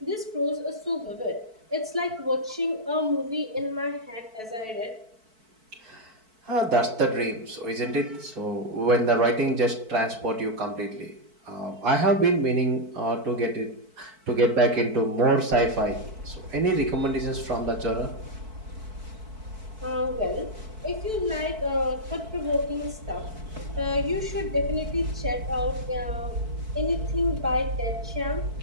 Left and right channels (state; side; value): late; left; 4.5 ms